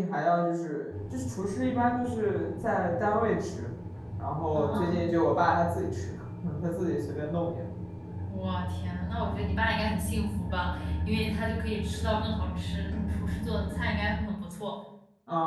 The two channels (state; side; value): identical; both; correlation 1.00